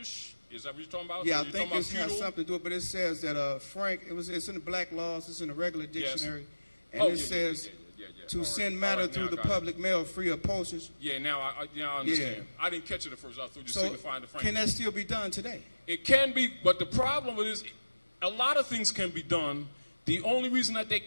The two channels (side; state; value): both; inverted; correlation -1.00